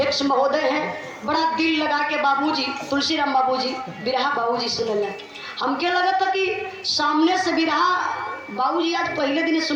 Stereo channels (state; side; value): identical; both; correlation 1.00